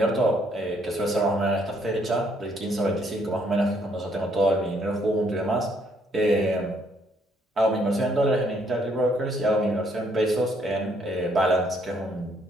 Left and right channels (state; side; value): normal; both; correlation 0.69